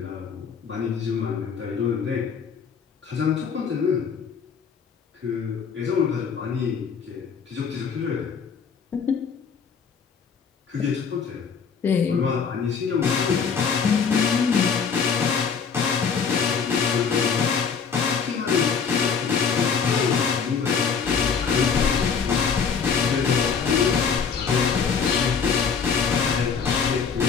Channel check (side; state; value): right; quieter; 6.2 dB